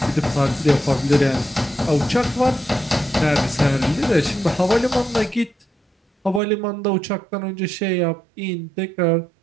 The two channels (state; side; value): drops out; left; at 6.4 s